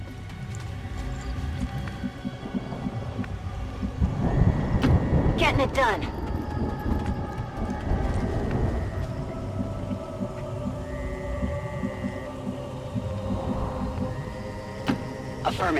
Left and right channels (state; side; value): identical; both; correlation 1.00